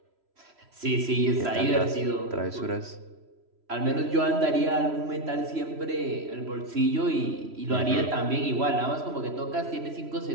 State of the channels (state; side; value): late; left; 3.1 ms